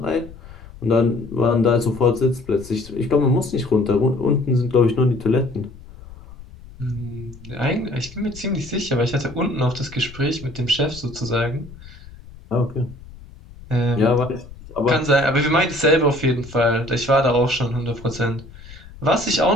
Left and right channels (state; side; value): noise; left; rumble, 18 dB below the sound